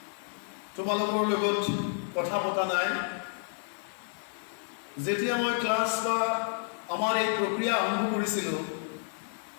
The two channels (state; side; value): silent; right; digital silence